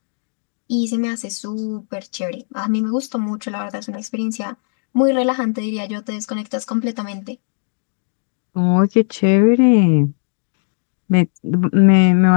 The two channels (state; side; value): silent; right; digital silence